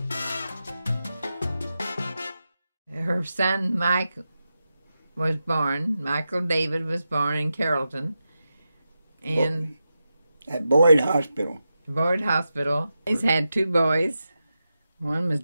Her son Mike was born. Michael David was born in Carrollton. And at Boyd Hospital. Boyd Hospital. He's had two boys. One was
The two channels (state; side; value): inverted; both; correlation -0.90